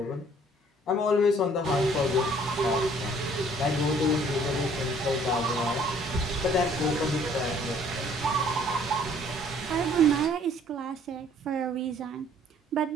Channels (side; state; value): both; normal; correlation 0.58